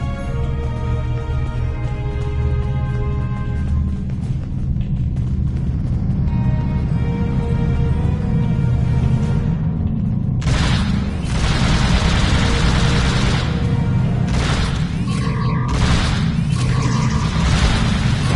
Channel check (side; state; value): both; identical; correlation 1.00